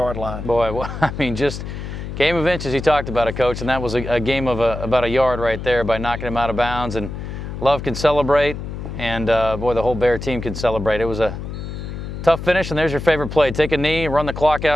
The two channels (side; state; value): left; noise; hum, 8 dB below the sound